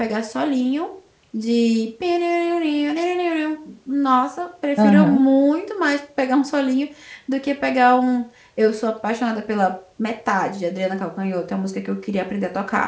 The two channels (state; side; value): identical; both; correlation 1.00